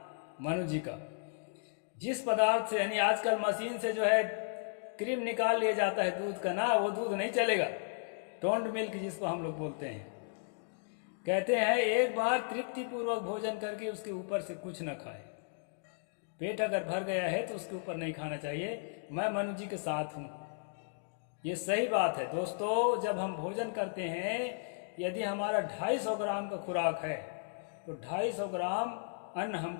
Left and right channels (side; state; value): right; silent; digital silence